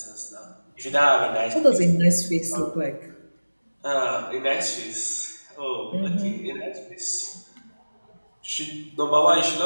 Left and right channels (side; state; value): both; inverted; correlation -1.00